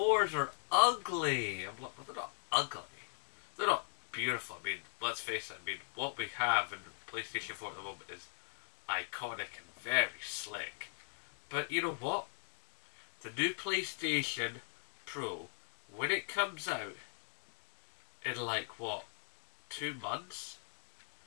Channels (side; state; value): right; silent; digital silence